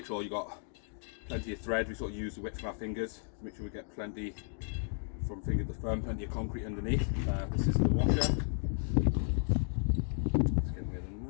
sure you got plenty of thread. We sort of use the width of our fingers to make sure we get plenty from finger to thumb, plenty of concrete underneath. This is the washer. Let's get rid of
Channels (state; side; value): silent; right; 55 dB below the other